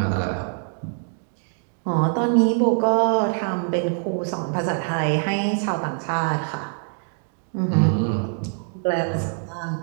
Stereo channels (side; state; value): left; silent; 55 dB below the other